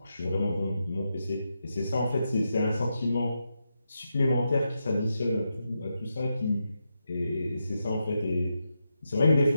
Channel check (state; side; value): inverted; both; correlation -0.86